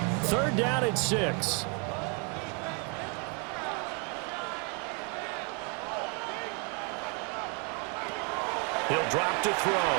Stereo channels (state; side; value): quieter; left; 35.7 dB